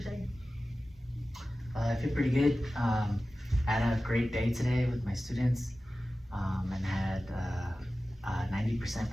I feel pretty good. Had a great day today with my students, and had 90%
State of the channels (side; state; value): both; normal; correlation 0.95